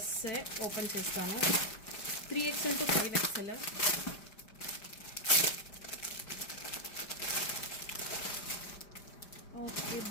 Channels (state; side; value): late; right; 5.0 ms